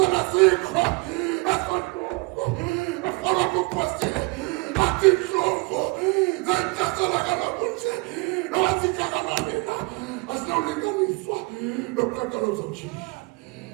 as for follow the question. I think so. Then Casalagana Bunche. No, I think I'm as now living in Swat. No crackers of cheese.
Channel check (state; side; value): quieter; left; 26.3 dB